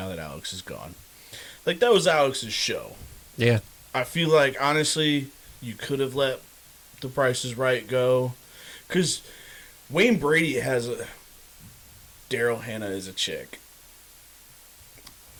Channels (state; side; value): identical; both; correlation 1.00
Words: that Alex is gone. Like that was Alex's show. Yeah. I feel like honestly, you could have let The Price Is Right go, because Wayne Brady has a Daryl Hannah is a chick.